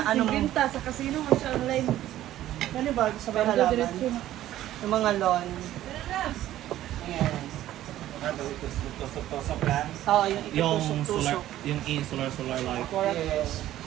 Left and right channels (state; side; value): quieter; left; 13.5 dB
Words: ano mo. Binta sa casino mo siya online. Ano ba? Sa mga halaman? Yung mga lawn. Ayan. Tusok-tusok lang. Oo, yung ikitusok-tusok. Yung solar light. Yes.